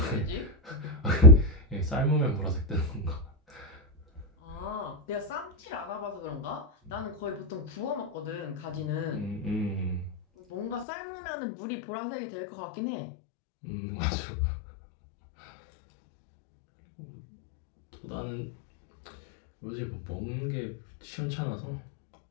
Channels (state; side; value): drops out; right; at 10.9 s